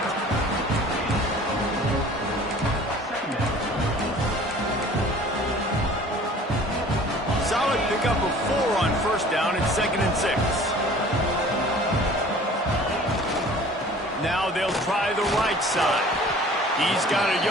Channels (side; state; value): both; normal; correlation 0.48